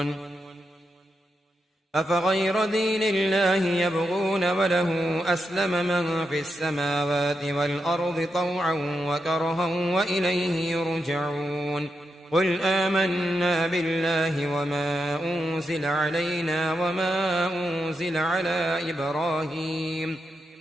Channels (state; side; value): normal; both; correlation 0.85